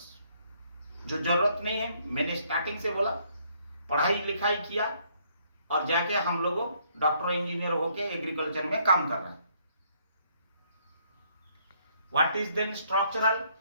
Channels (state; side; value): inverted; both; correlation -0.68